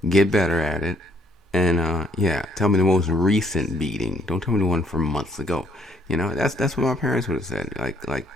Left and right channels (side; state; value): both; normal; correlation 0.66